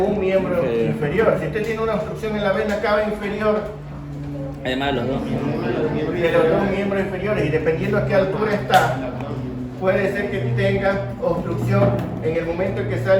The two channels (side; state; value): both; identical; correlation 1.00